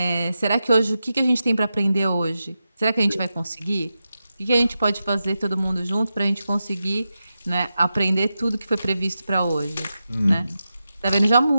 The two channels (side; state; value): both; inverted; correlation -0.90